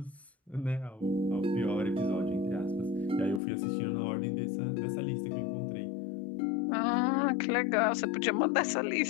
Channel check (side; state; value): right; drops out; at 3.4 s